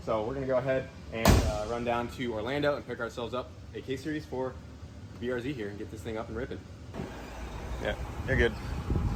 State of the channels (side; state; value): both; identical; correlation 1.00